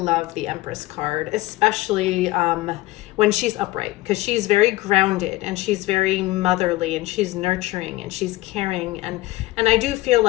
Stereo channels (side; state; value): right; quieter; 18.7 dB